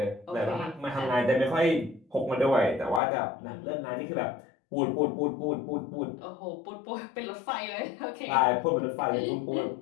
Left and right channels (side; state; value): right; drops out; at 3.0 s